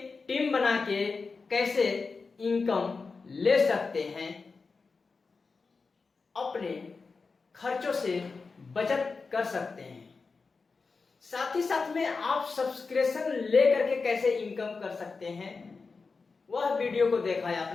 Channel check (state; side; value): quieter; right; 4.5 dB